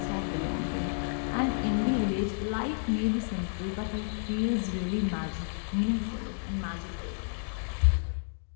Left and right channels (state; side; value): silent; right; digital silence